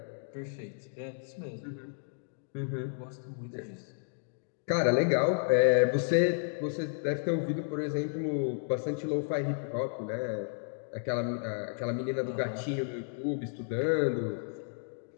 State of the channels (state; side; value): silent; right; digital silence